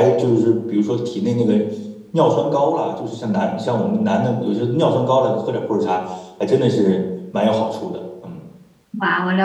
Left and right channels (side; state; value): both; identical; correlation 1.00